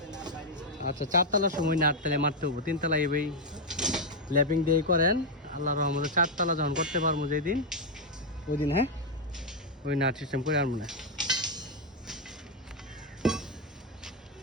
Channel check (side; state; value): both; normal; correlation 0.01